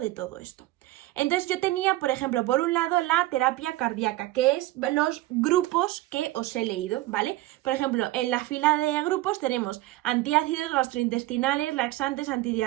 todo esto. Entonces yo tenía, por ejemplo, por un lado la terapia cardíaca, que es los grupos que os he leído, ¿vale? Por ejemplo, en la fila de grupos tenemos antiácidos, gastrointestinales, laxantes,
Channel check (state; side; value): quieter; left; 17.2 dB